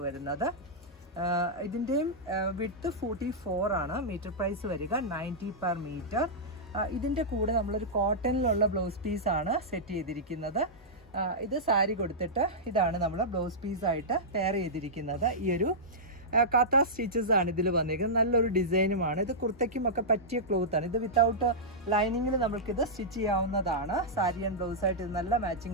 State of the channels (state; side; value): normal; both; correlation -0.12